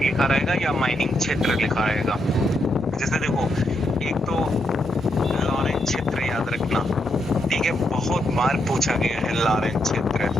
लिखा रहेगा या माइनिंग क्षेत्र लिखा रहेगा। जैसे देखो, एक तो लॉरेंस क्षेत्र याद रखना, ठीक है, बहुत बार पूछा गया है लॉरेंस क्षेत्र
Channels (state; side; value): normal; both; correlation 0.80